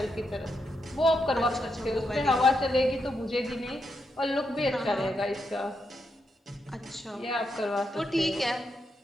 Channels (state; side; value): normal; both; correlation 0.83